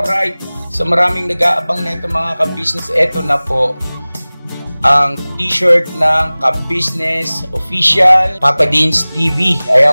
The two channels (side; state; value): both; inverted; correlation -0.99